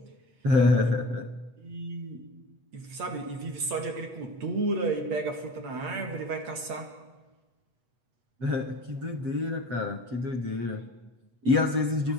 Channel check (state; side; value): late; left; 8.1 ms